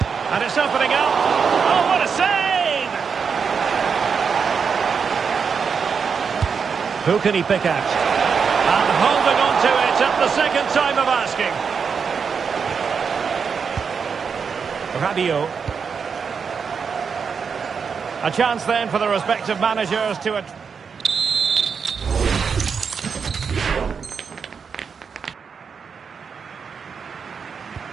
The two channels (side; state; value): left; quieter; 6.1 dB